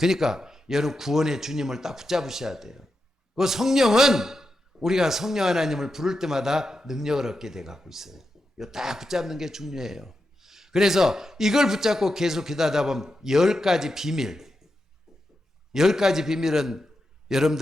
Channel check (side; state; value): both; normal; correlation 0.88